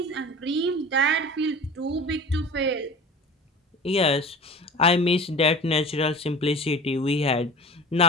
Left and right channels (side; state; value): both; normal; correlation 0.37